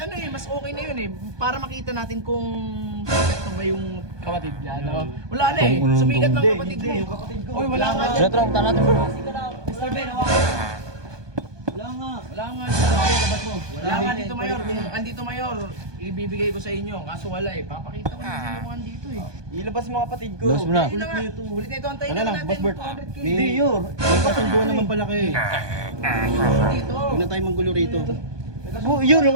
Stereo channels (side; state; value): left; late; 1.2 ms